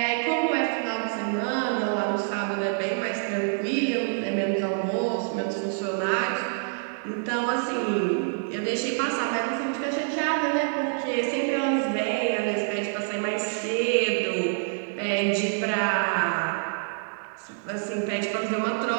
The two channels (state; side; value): silent; left; digital silence